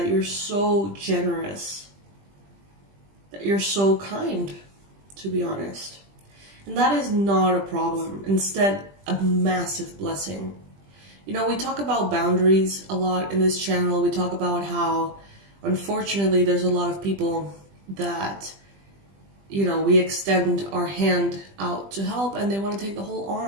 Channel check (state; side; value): late; left; 20 ms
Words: you're so generous, that you're so kind, to be honest. And that is not a problem. Instead, a massive blessing. We talk about boundaries a lot in this channel. We talk about how, unfortunately, there's a lot of people that, we extend our hand out to help and they want to take the whole